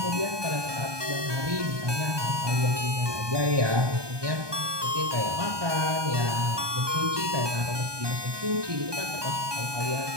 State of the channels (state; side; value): late; left; 1.2 ms